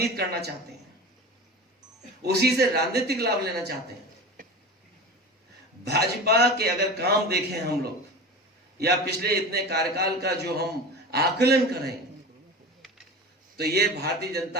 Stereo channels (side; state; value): both; normal; correlation 0.31